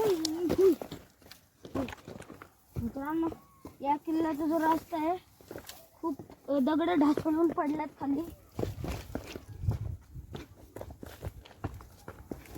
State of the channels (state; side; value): identical; both; correlation 1.00